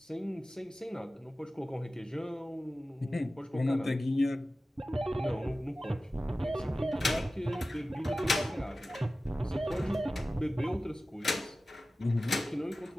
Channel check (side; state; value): both; normal; correlation 0.95